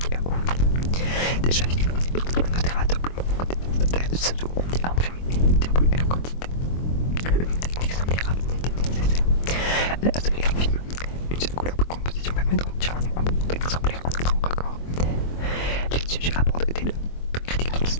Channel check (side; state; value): right; late; 23 ms